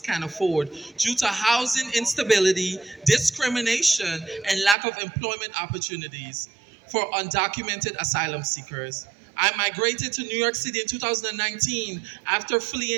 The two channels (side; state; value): left; drops out; at 4.8 s